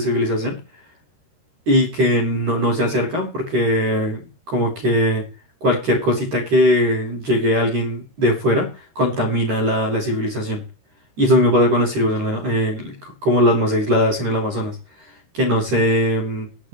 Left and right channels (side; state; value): left; late; 13 ms